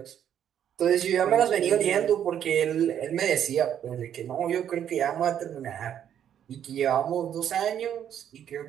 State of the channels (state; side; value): quieter; left; 9.6 dB